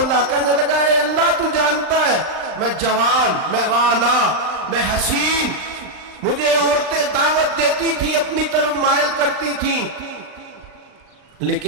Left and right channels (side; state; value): left; late; 39 ms